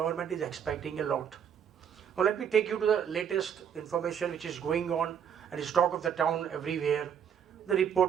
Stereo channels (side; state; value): left; quieter; 8.2 dB